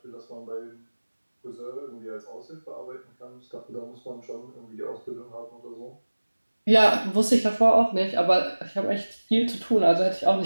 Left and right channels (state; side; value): inverted; both; correlation -1.00